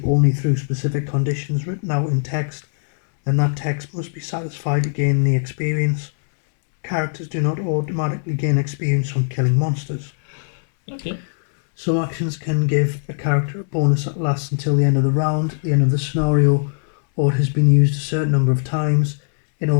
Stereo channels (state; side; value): silent; right; 66 dB below the other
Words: only through specific conditions written out in text, then that text must be satisfied to gain the experience. Characters do not automatically gain experience from killing monsters. Okay. Some actions can give a character a bonus that lasts until the end of the round, the end of the scenario, or it has been used a certain number of times. In